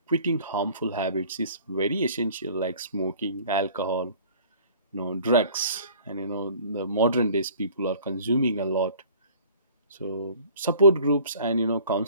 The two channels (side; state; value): both; inverted; correlation -0.50